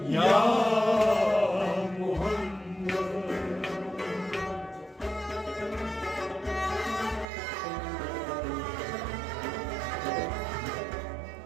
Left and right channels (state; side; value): drops out; left; at 7.2 s